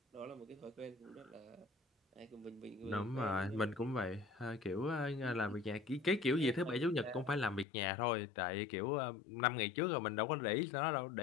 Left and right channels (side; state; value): right; drops out; at 7.7 s